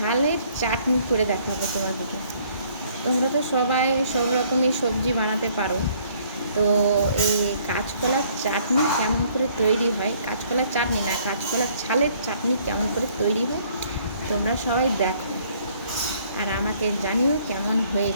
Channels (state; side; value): inverted; both; correlation -0.61